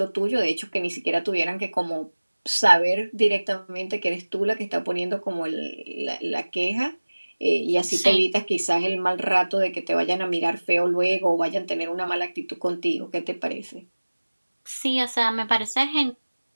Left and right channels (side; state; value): both; inverted; correlation -1.00